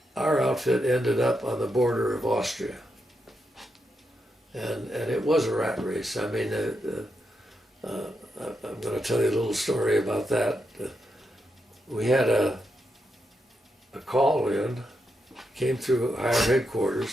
our outfit ended up on the border of Austria. And it was a rat race. I mean, I'm going to tell you a little story about that. We had a call in, came through our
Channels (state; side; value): normal; both; correlation 0.84